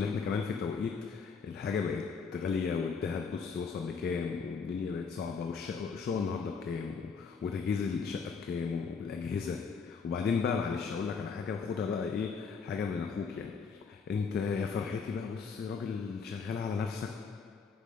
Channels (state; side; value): quieter; right; 5.4 dB